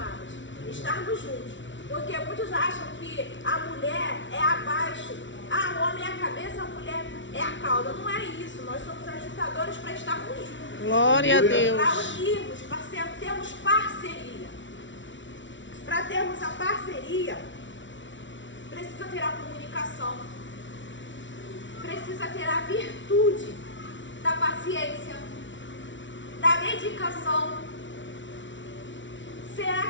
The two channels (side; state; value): right; late; 0.55 ms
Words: Estarmos juntos. Porque muitos acham que a mulher é abaixo. Ah, o homem é a cabeça, a mulher é a cauda. Não é isso. Nós somos ajuntadores para estarmos juntos. Glória a Deus. Para unirmos, para termos parceria. Para termos a parceria, precisa ter a comunicação. Precisa ter a virtude da paciência, da dedicação. Será